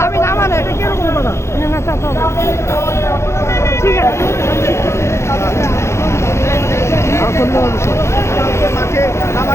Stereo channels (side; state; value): right; late; 0.13 ms